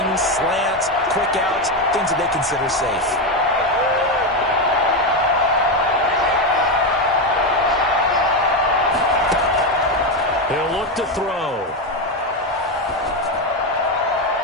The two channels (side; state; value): both; normal; correlation 0.10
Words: slants, quick outs, things that they consider safe. He'll look to throw.